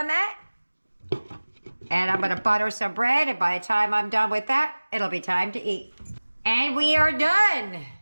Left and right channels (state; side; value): inverted; both; correlation -1.00